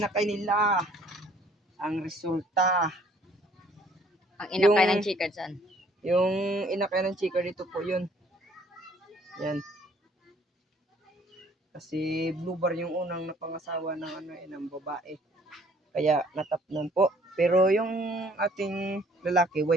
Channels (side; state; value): both; normal; correlation 0.59